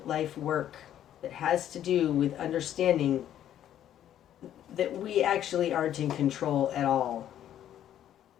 life work that has to do with understanding that we actually aren't in control at all.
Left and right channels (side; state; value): right; quieter; 11.1 dB